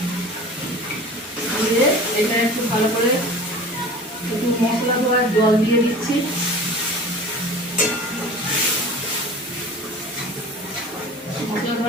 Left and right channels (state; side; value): normal; both; correlation 0.40